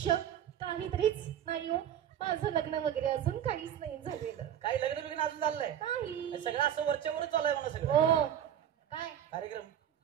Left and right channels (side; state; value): left; quieter; 10.0 dB